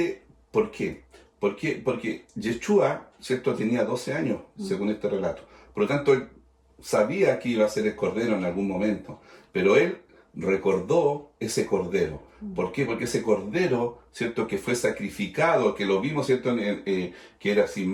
¿por qué? Porque Yeshua, ¿cierto?, tenía 12 años, según este relato. Por lo tanto, él sabía que iba a ser el cordero en algún momento, pero él recordó ese cordero. ¿Por qué? Porque ese cordero, ¿cierto?, que fue sacrificado, que lo vimos, ¿cierto?, que era sin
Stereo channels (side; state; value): both; identical; correlation 1.00